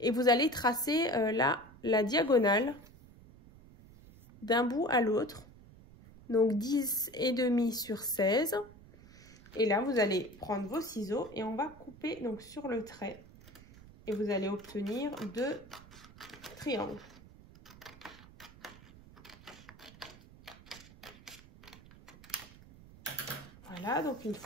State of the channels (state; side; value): noise; right; rumble, 21 dB below the sound